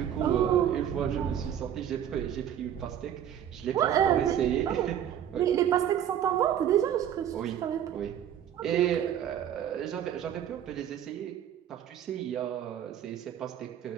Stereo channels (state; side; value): quieter; left; 10.0 dB